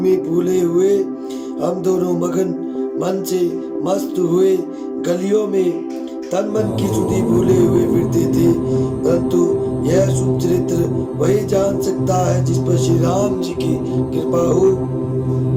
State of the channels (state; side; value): identical; both; correlation 1.00